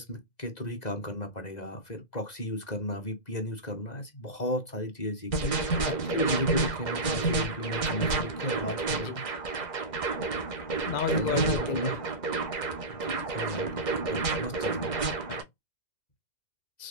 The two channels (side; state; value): right; late; 2.0 ms